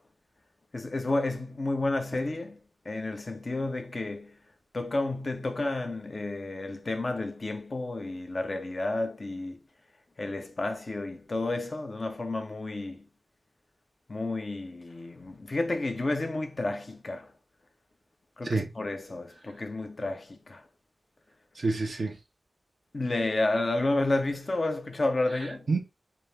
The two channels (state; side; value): normal; both; correlation 0.95